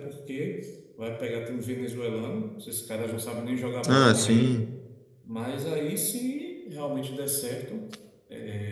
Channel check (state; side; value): identical; both; correlation 1.00